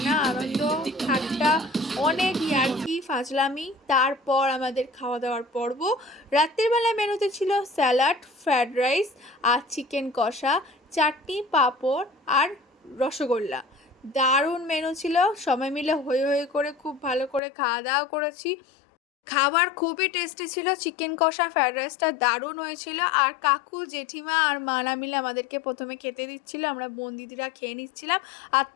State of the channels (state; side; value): drops out; right; at 17.4 s